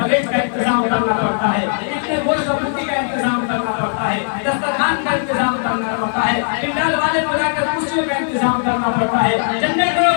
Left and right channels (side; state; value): right; silent; digital silence